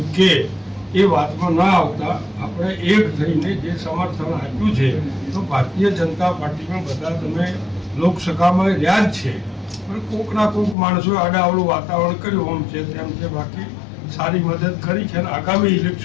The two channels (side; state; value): right; drops out; at 10.8 s